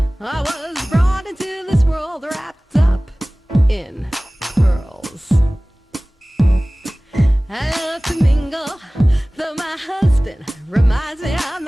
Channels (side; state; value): both; normal; correlation 0.98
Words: I was brought into this world wrapped up in pearls. I love to mingle, though my husband reminds me I'm